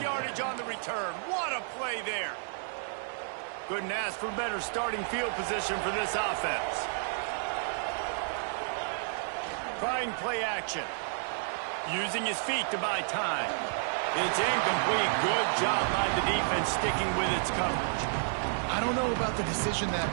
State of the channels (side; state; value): left; silent; digital silence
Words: yardage on the return. What a play there. Couldn't ask for better starting field position for this offense. Trying play action. Using his feet to buy time. It's incomplete. Good job by the defense sticking with its coverage. I don't know about the decision